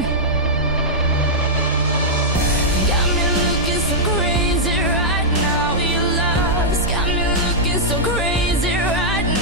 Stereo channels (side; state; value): both; normal; correlation -0.08